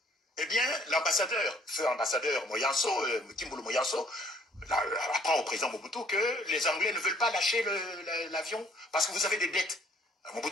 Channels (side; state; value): both; normal; correlation 0.61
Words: eh bien, l'ambassadeur, feu ambassadeur Moyanso, Kimbulu Moyanso, apprend au président Mobutu que les Anglais ne veulent pas lâcher l'avion parce que vous avez des dettes.